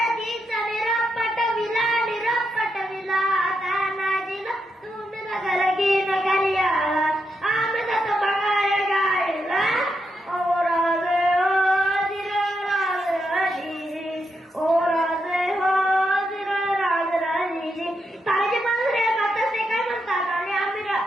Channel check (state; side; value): normal; both; correlation 0.83